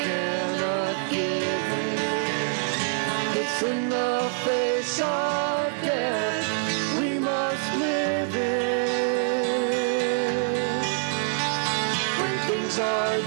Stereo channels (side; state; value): left; silent; digital silence